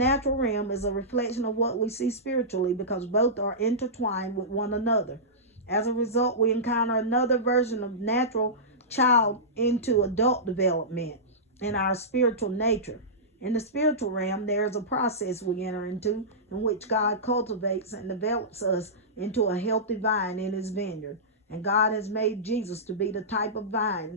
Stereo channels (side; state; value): both; normal; correlation -0.17